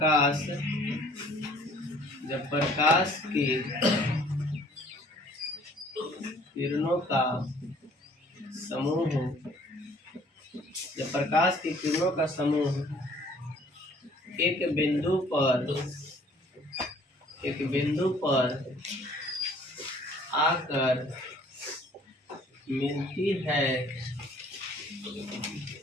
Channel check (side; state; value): both; normal; correlation 0.56